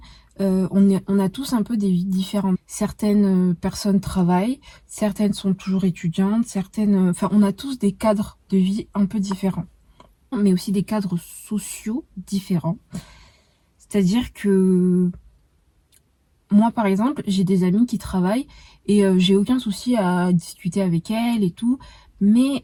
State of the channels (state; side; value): identical; both; correlation 1.00